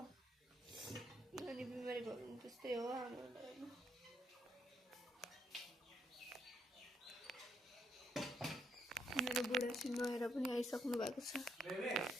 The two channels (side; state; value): both; normal; correlation 0.76